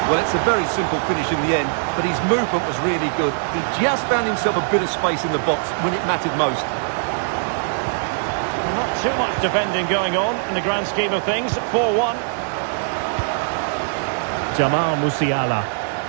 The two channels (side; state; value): left; silent; digital silence